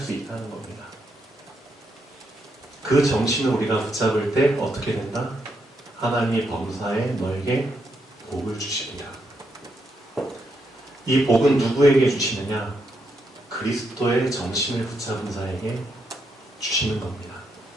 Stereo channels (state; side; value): normal; both; correlation 0.79